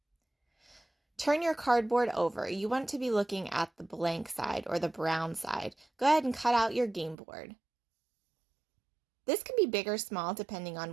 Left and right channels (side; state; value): left; drops out; at 7.2 s